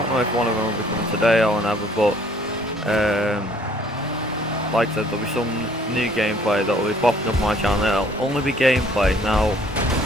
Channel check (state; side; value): normal; both; correlation 0.59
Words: know if one of them will be coming today or whenever, but like I said, there'll be some new gameplay that will be popping up on my channel. It'll only be gameplay. Now,